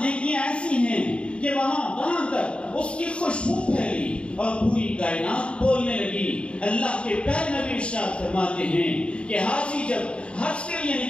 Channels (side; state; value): right; late; 0.057 ms